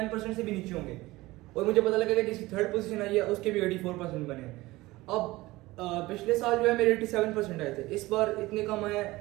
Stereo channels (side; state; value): left; quieter; 19.4 dB